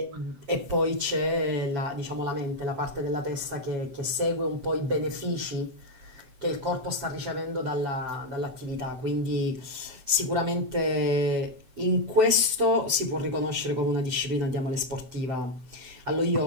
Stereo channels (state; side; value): late; left; 7.7 ms